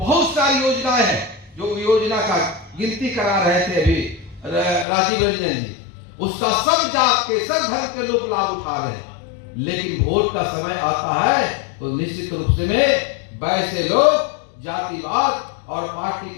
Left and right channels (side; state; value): right; drops out; at 4.9 s